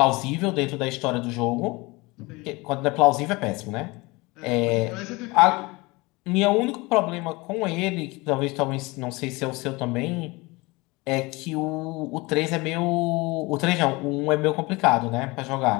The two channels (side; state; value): right; quieter; 24.0 dB